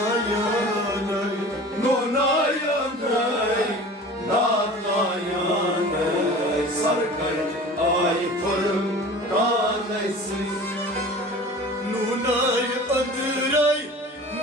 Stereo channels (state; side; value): normal; both; correlation 0.40